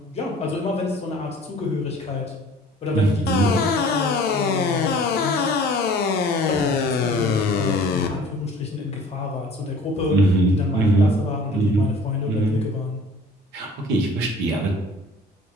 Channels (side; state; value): both; normal; correlation 0.48